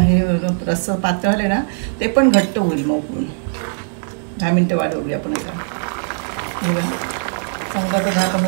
रस्स पातळ झाले ना ते पण घट्ट होईल. मग उकळून 10 मिनिटं वाढवली आपण. आता हे बघा चांगलं आता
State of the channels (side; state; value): left; silent; digital silence